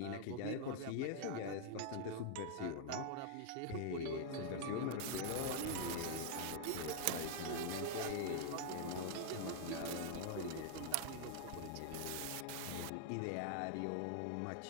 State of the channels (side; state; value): both; different; correlation 0.00